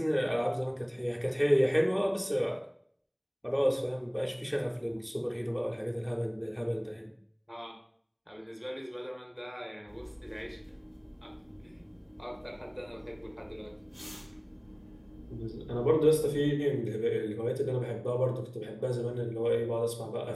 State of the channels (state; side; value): identical; both; correlation 1.00